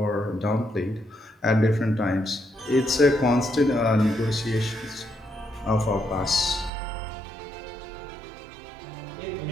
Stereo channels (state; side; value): drops out; left; at 6.7 s